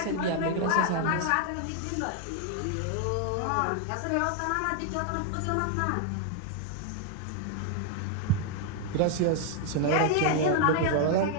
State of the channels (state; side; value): different; both; correlation 0.00